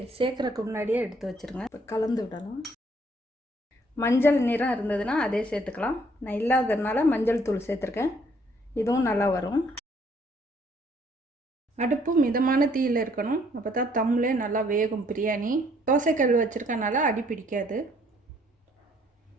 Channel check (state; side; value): normal; both; correlation 0.64